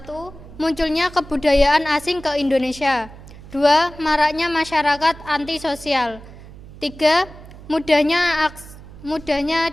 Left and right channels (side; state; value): right; noise; hum, 18 dB below the sound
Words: Munculnya kebudayaan asing ke Indonesia. 2. Maraknya masyarakat antisosial. 3. Mudahnya